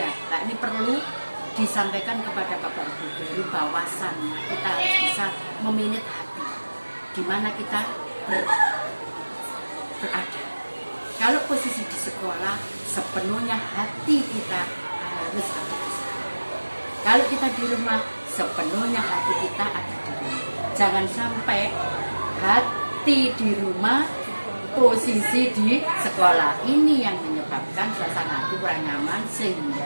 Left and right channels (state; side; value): inverted; both; correlation -1.00